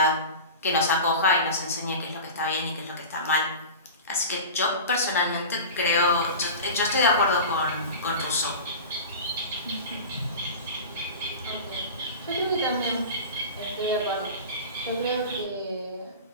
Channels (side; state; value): both; inverted; correlation -0.31